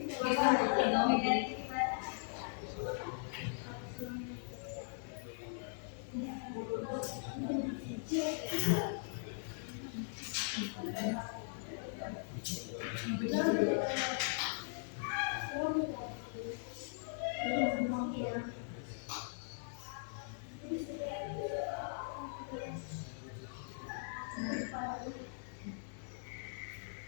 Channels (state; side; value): silent; right; 51 dB below the other